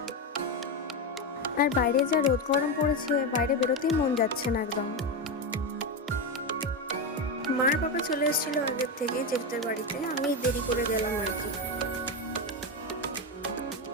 আর বাইরে যা রোদ গরম পড়েছে, বাইরে বেরোতেই মন যাচ্ছে না একদম। মার বাবা চলে এসেছিল আগের থেকে জেঠুদের বাড়িতে, আমি দেরি করে গেলাম আর কি।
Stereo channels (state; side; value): normal; both; correlation 0.12